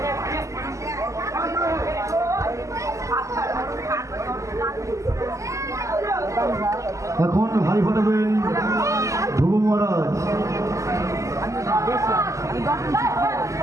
এখন হাড়ি ফাটাবেন ধ্রুব মহারাজ।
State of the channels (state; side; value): late; left; 0.15 ms